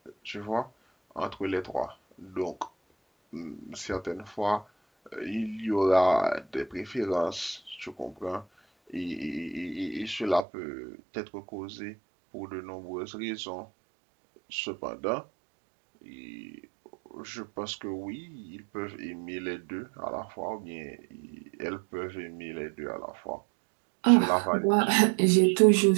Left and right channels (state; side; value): drops out; left; at 10.5 s